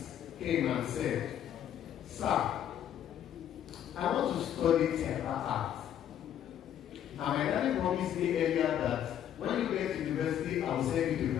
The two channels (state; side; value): quieter; right; 10.2 dB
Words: came and said, "Sir, I want to study theater art. And my daddy promised me earlier that when you get to university, I will send you to